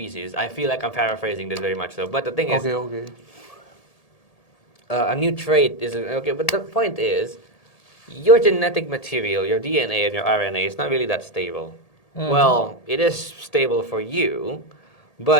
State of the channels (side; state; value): right; late; 1.8 ms